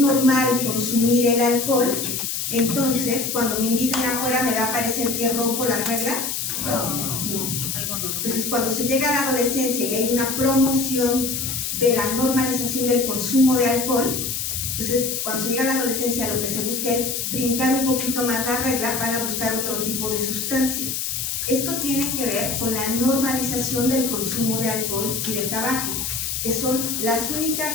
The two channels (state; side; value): noise; left; hiss, 2 dB below the sound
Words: consumir el alcohol, entonces cuando me inviten afuera me va a parecer que rompo las reglas. No. Entonces cuando se llega a la adolescencia y hay una promoción de la normalización del consumo de alcohol, entonces cuando se llega a la adolescencia lo que se busca es brincar un poquito más la regla, van a buscar otro tipo de sustancias. Esto tiene que ver con la normalización del consumo de alcohol y de tabaco, que son las